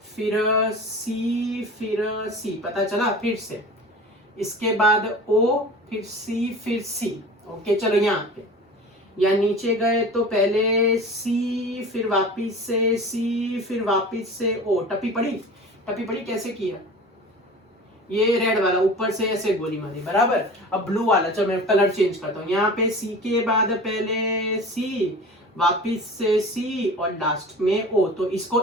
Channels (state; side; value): normal; both; correlation 0.37